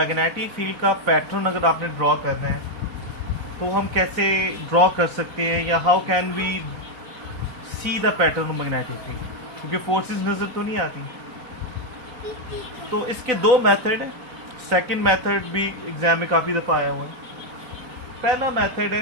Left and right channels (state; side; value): late; left; 4.0 ms